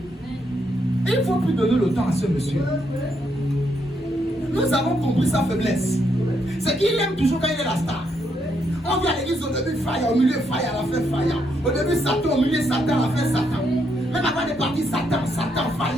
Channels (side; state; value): both; normal; correlation 0.77